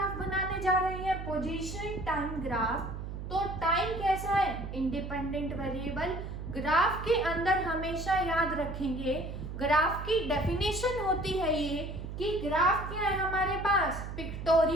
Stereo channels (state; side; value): noise; right; hum, 7 dB below the sound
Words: बनाने जा रहे हैं? Position time graph. तो टाइम कैसा है? Independent variable. ग्राफ के अंदर हमेशा याद रखेंगे, ग्राफ की डेफिनेशन होती है ये कि ग्राफ क्या है हमारे पास?